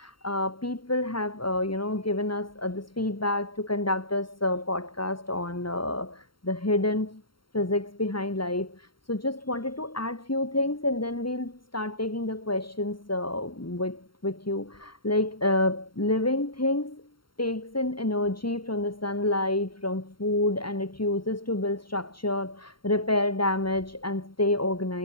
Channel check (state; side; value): late; right; 0.73 ms